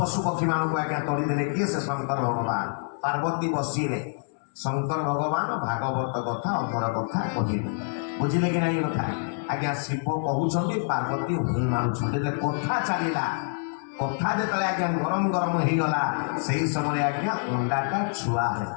ପକ୍ଷୀ ମାନଙ୍କୁ ଆଜ୍ଞା ତଳିଦେଲେ କିଏ ସେ ଶଙ୍କର ଭଗବାନ ପାର୍ବତୀ ବସିଲେ ଶଙ୍କର ଭଗବାନ ଭାଗବତ କଥା ଅମର କଥା କହିଲେ ବୁଝିଲେ କି ନାଇଁ କଥା ଆଜ୍ଞା ଶିବ କହୁଛନ୍ତି ପାର୍ବତୀ ହୁଁ ମାରୁଛନ୍ତି କଥା ଚାଲିଲା କଥା ଯେତେବେଳେ ଆଜ୍ଞା ଗରମ ହେଇଗଲା ସେଇ ସମୟରେ ଆଜ୍ଞା ଅଣ୍ଡାଟା ଛୁଆ ହେଲା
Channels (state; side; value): silent; right; 59 dB below the other